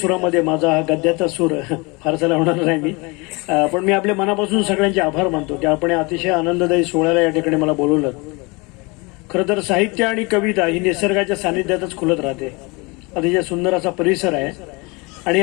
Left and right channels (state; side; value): quieter; right; 27.3 dB